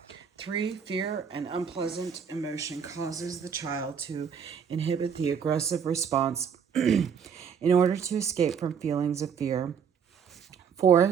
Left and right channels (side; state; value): left; quieter; 7.0 dB